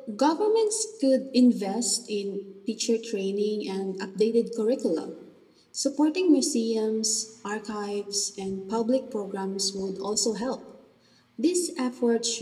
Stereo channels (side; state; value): both; identical; correlation 1.00